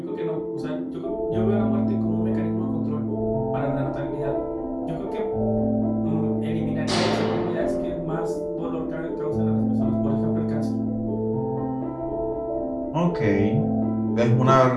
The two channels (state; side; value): identical; both; correlation 1.00